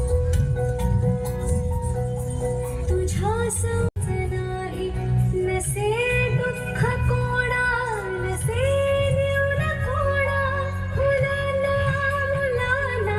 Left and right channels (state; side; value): identical; both; correlation 1.00